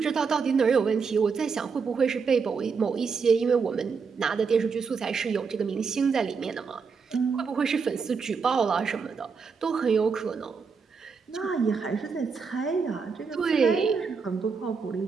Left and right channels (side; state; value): left; quieter; 5.5 dB